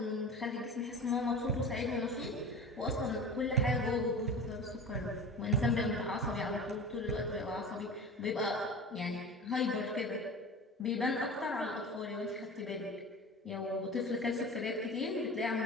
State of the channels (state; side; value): normal; both; correlation 0.34